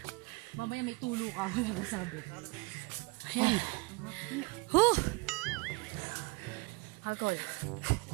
Mamaya may tulo ka, wala ka sabi. Ayan. Huh! Hagol.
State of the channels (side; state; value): left; quieter; 26.0 dB